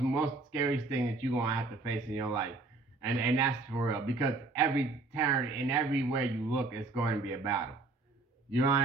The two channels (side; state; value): left; quieter; 3.4 dB